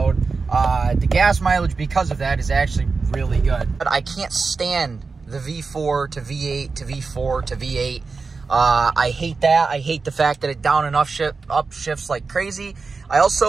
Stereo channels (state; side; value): quieter; left; 4.4 dB